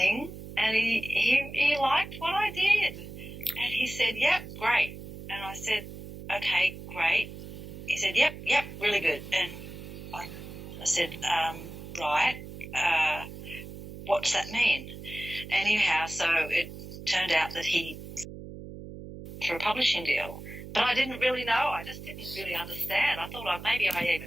and he liked what I did. And he said, yep, great. And I said, okay, great. He said, yep, really good. And I said, right, what does that mean? Anyhow, so it turned out that he for a publishing deal. But I didn't really know. I just didn't really understand. I thought maybe I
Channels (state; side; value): noise; right; hum, 12 dB below the sound